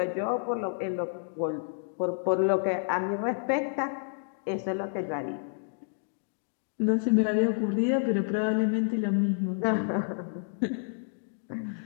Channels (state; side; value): silent; right; digital silence